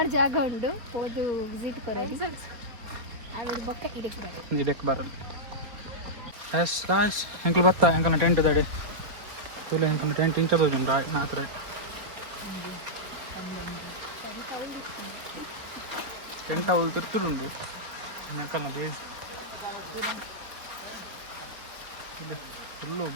ಜಾಗ ಉಂಡು ಹೋದು ವಿಸಿಟ್ ಕೊರೋದು ಆಮೇಲೆ ಬೊಕ್ಕ ಇದಕ್ಕೆ ಬರೋದು ಎಸ್ ಗಾಯ್ಸ್ ಎಂಕಲ್ ಬತ್ತಾ ಎಂಕಲ್ನ ಟೆಂಟ್ ದಡಿ ತುಲೆ ಎಂಕಲ್ನ ಟೆಂಟ್ ಇಂಚದೋಜು ನಾತ್ರ ಟೆಂಟ್ ಅವಳು ತಿರ್ತುಡುಂಡು ಎಂಕಲ್ನ ಬೇಸ್ ಇದೆ ಫುಲ್ಲು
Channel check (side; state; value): left; late; 4.3 ms